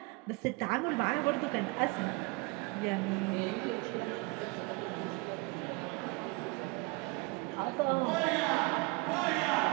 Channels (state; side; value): quieter; left; 26.2 dB